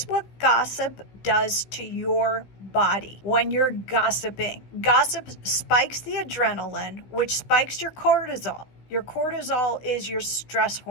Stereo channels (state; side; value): late; right; 16 ms